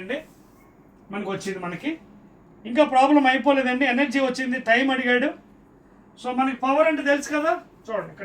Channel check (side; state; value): both; identical; correlation 1.00